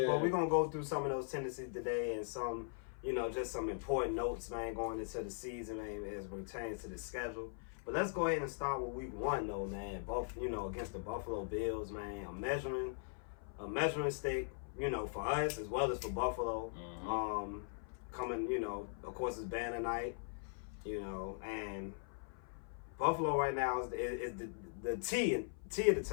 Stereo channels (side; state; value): right; silent; 51 dB below the other